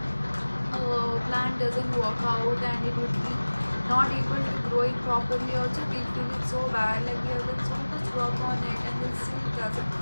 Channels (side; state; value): both; inverted; correlation -1.00